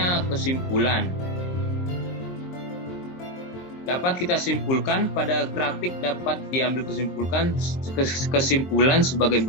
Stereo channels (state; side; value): late; right; 23 ms